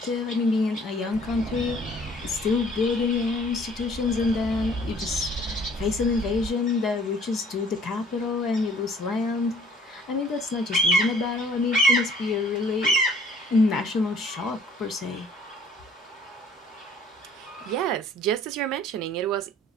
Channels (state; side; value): normal; both; correlation 0.56